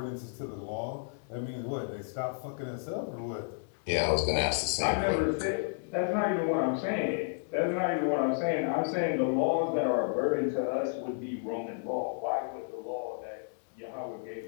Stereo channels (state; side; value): silent; right; digital silence